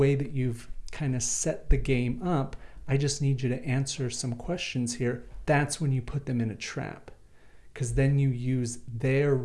that you've kind of set the game up. I just need you to answer some questions here. That's when you put them in a trap, because then you use their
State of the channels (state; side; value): identical; both; correlation 1.00